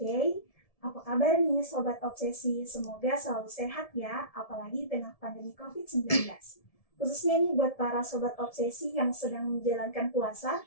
apa kabar nih Sobat Obsesi? Semoga selalu sehat ya, apalagi di tengah pandemi COVID-19. Khususnya nih buat para Sobat Obsesi yang sedang menjalankan puasa,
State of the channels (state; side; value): late; right; 1.7 ms